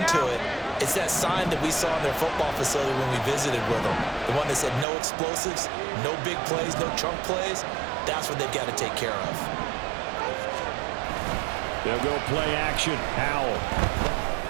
to it, it's that sign that we saw in their football facility when we visited with them. The one that said no explosives, no big plays, no chunk plays. That's what they've got to take care of. They'll go play action. Howell.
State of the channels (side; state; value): left; drops out; at 4.9 s